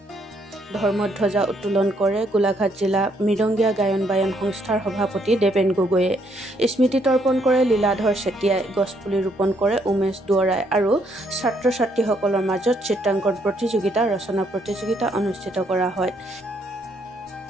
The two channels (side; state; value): both; normal; correlation 0.71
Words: ধৰ্মধ্বজা উত্তোলন কৰে গোলাঘাট জিলা মৃদঙ্গীয়া গায়ন বায়ন সংস্থাৰ সভাপতি দেৱেন গগৈয়ে। স্মৃতি তৰ্পণ কৰে লীলাধৰ চেতিয়াই। গছপুলি ৰোপণ কৰে উমেশ দুৱৰাই আৰু ছাত্ৰ ছাত্ৰীসকলৰ মাজত চিত্ৰাংকন প্ৰতিযোগিতা ৰচনা প্ৰতিযোগিতা অনুষ্ঠিত কৰা হয়।